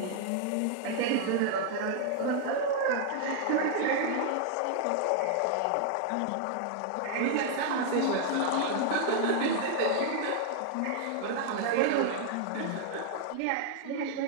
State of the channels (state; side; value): different; both; correlation -0.01